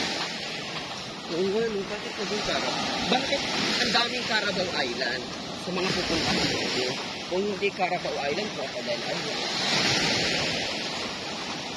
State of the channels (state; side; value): identical; both; correlation 1.00